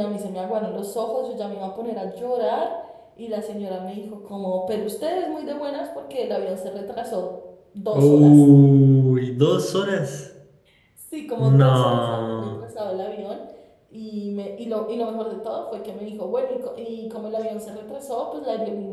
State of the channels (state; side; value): identical; both; correlation 1.00